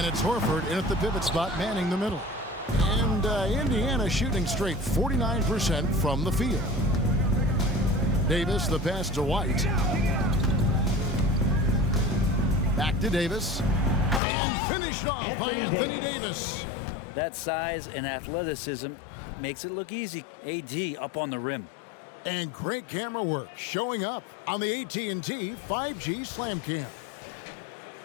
it's Horford in at the pivot spot manning the middle. And Indiana shooting straight 49% from the field. Davis, the pass to White. Back to Davis. And finished off by Anthony Davis. That size and athleticism makes it look easy. AD up on the rim. And great camera work showing up on the AT&T 5G Slam Cam.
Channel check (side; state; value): right; drops out; at 14.2 s